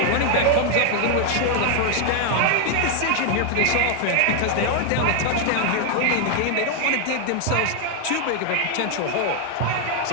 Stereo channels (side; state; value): both; different; correlation 0.00